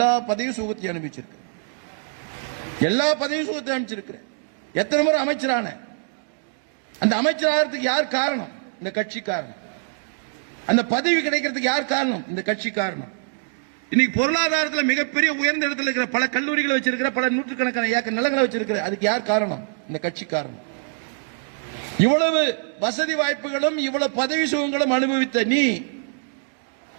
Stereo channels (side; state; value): left; silent; digital silence